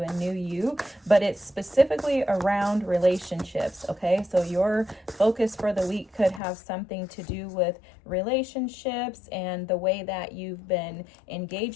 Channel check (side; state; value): right; drops out; at 6.4 s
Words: new you, but it's specifically around relationships. Okay, so your focus for the week could have something to do with relationships and the way that you've been